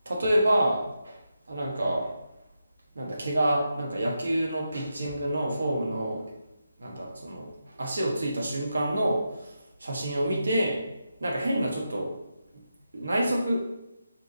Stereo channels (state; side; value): inverted; both; correlation -0.87